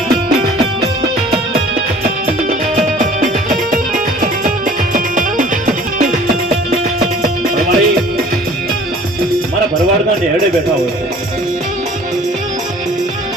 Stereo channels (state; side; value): normal; both; correlation 0.49